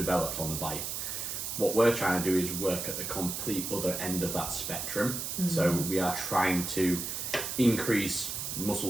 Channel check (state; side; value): noise; right; hiss, 4 dB below the sound